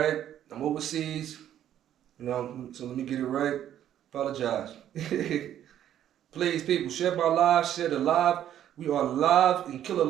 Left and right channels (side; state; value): left; quieter; 11.0 dB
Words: I'm overseas. So let me get it right. Apologize. Please, people, share my live. Share the live. We are live in